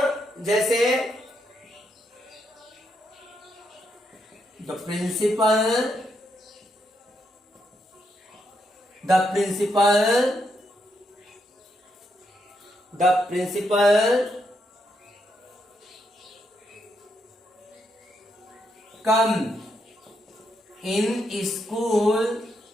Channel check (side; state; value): both; normal; correlation 0.79